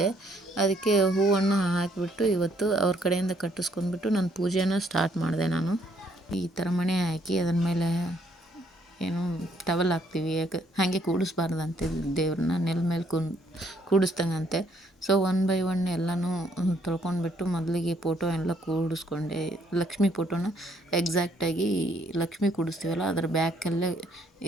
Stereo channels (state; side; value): normal; both; correlation 0.68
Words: ಅದಕ್ಕೆ ಹೂವನ್ನು ಹಾಕಿಬಿಟ್ಟು ಇವತ್ತು ಅವ್ರ ಕಡೆಯಿಂದ ಕಟ್ಟಿಸ್ಕೊಂಡ್ಬಿಟ್ಟು ನನ್ನ ಪೂಜೆನ ಸ್ಟಾರ್ಟ್ ಮಾಡಿದೆ ನಾನು. ಈ ಥರ ಮಣೆ ಹಾಕಿ ಅದರ ಮೇಲೆ ಏನು ಟವಲ್ ಹಾಕ್ತೀವಿ, ಯಾಕೆ ಹಾಗೆ ಕೂಡಿಸ್ಬಾರ್ದಂತೆ ದೇವ್ರನ್ನ, ನೆಲ ಮೇಲೆ ಕೂಡಿಸ್ದಂಗಂತೆ. ಸೊ 1 by 1 ಎಲ್ಲನೂ ತೊಳ್ಕೊಂಡ್ಬಿಟ್ಟು ಮೊದಲಿಗೆ ಫೋಟೋ ಎಲ್ಲ ಕೂಡಿಸ್ಕೊಂಡೆ. ಲಕ್ಷ್ಮಿ ಫೋಟೋನ ಎಕ್ಸಾಕ್ಟಾಗಿ ಲಕ್ಷ್ಮಿ ಕೂಡಿಸ್ತೀವಲ್ಲ ಅದರ ಬ್ಯಾಕಲ್ಲೇ